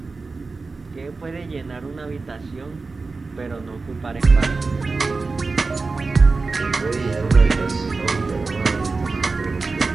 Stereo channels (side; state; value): left; quieter; 4.0 dB